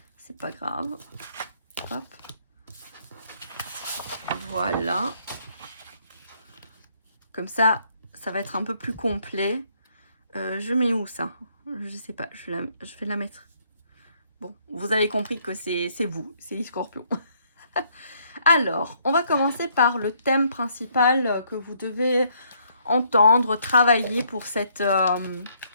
C'est pas grave. Hop. Voilà. Comme ça, ça va être un peu plus complet. Je mets où ça? Je sais pas. Je vais la mettre. Bon, vous avez compris que c'est vous, c'est les scorpions. Alors, on va commencer par le thème principal que vous devez entendre, travailler pour cette...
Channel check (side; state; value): both; inverted; correlation -0.68